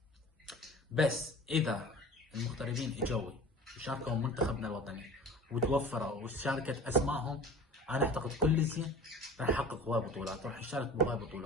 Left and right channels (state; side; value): normal; both; correlation 0.39